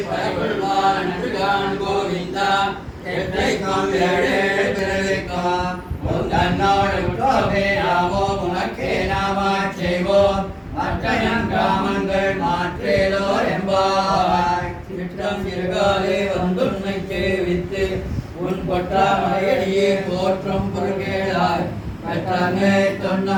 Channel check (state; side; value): identical; both; correlation 1.00